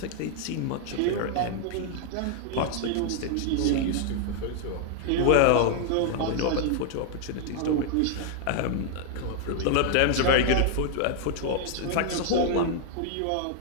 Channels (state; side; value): different; both; correlation 0.00